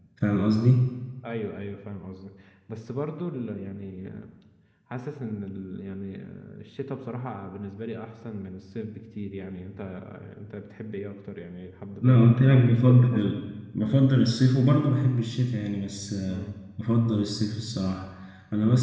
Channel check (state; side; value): identical; both; correlation 1.00